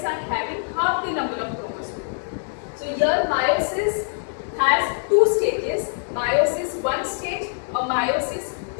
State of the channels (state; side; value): silent; right; digital silence